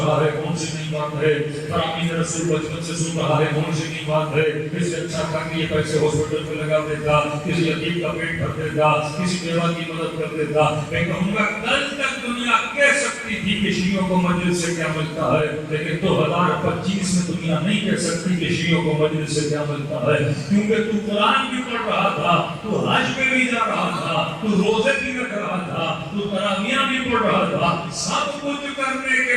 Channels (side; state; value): both; identical; correlation 1.00